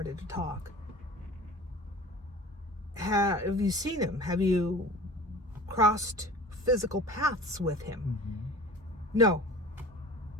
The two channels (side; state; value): both; normal; correlation 0.40